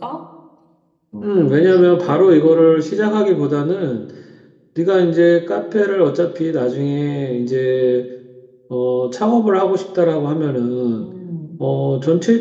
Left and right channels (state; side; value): identical; both; correlation 1.00